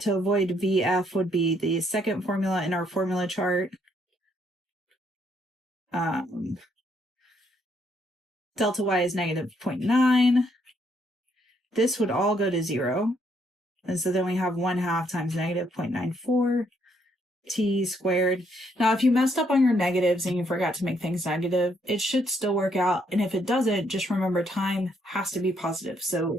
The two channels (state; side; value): normal; both; correlation 0.71